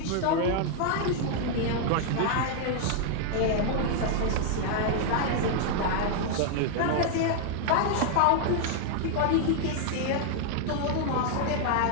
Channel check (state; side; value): different; both; correlation 0.00